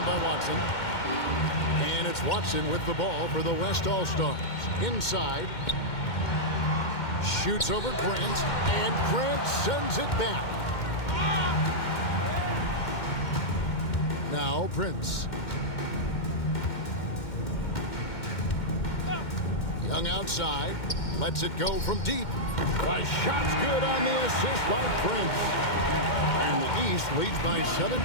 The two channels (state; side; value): late; right; 2.1 ms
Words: by Watson. And it's Watson with the ball for the West All-Stars. Inside. Shoots over Grant. And Grant sends it back. Now Prince. Young outside. Lets it go from deep. The shot's good on the assist by Prince. And the East leads by 17.